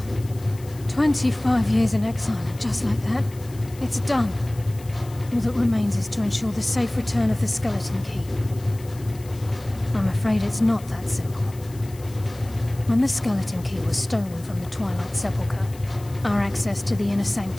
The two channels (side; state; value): left; noise; hiss, 21 dB below the sound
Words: 25 years in exile, and just like that, it's done. All that remains is to ensure the safe return of the skeleton key. I'm afraid it's not that simple. When the skeleton key was stolen from the Twilight Sepulchre, our access to the inner